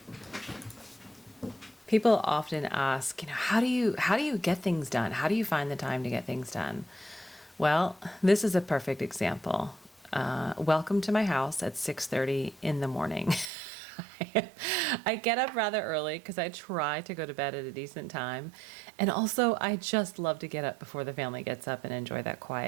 People often ask, how do you get things done? How do you find the time to get things done? Well, this is a perfect example. Welcome to my house at 6:30 in the morning. I get up rather early because I try to go to bed at a decent time. And also, I just love to get up before the family gets up and enjoy that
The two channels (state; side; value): drops out; left; at 13.5 s